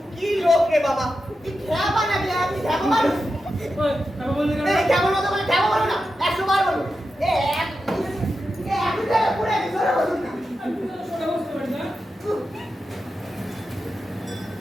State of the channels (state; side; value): normal; both; correlation 0.90